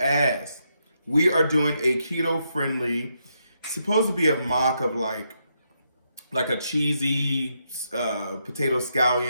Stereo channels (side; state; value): both; inverted; correlation -0.80